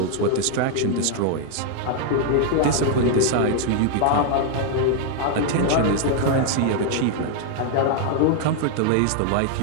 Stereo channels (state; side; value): different; both; correlation 0.00